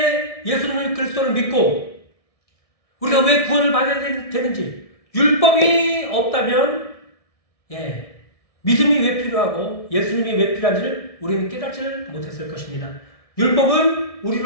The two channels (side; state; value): right; late; 1.6 ms